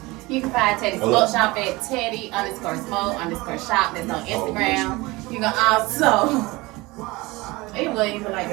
You can find Teddy Smoke Shop at Teddy_Smoke_Shop. That's on Instagram. You can also. It wasn't even like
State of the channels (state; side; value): quieter; left; 22.2 dB